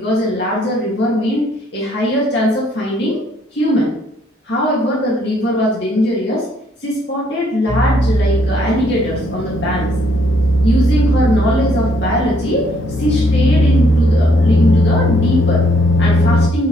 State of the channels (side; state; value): both; normal; correlation 0.68